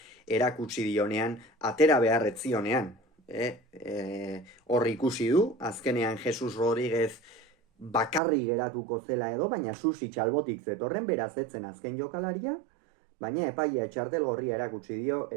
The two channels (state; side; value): drops out; left; at 8.2 s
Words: erakutsi dionean, atera beharretzionean. Hor ikusi du, azkenean Jesus Rodríguez bakarri geratuko zela edo, baina Susic albotik zetorren beraz etzen azken jokalaria, baina epaia txartelgorria erakutsi dio,